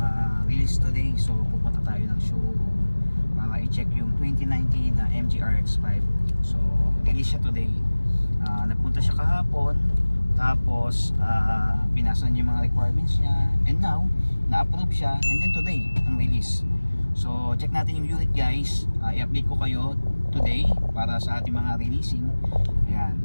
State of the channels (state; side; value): inverted; both; correlation -1.00